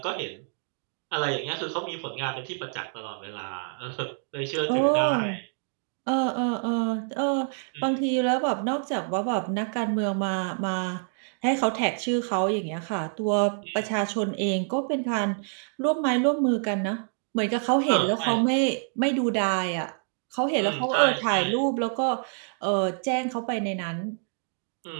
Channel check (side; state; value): left; silent; 60 dB below the other